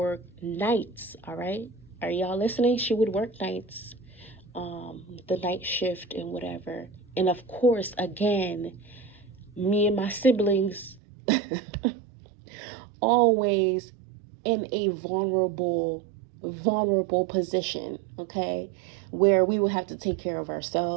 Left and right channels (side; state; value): left; drops out; at 11.0 s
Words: nights, all right? Are y'all listening? She would work nights, the night shift and whatever. And of course, again, me and my siblings always in a vulnerable position, okay? Where we would have to take care of